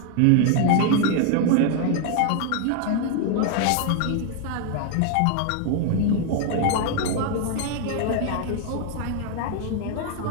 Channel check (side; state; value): both; different; correlation 0.00